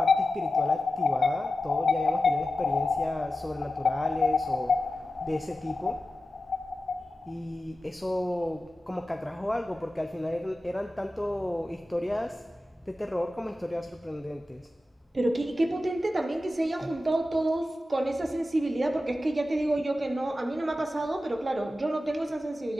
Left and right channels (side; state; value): both; normal; correlation 0.93